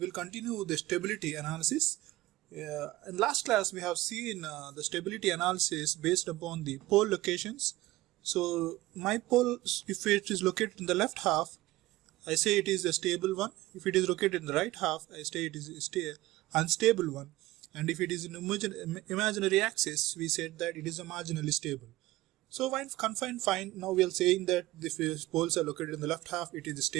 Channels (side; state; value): left; quieter; 17.9 dB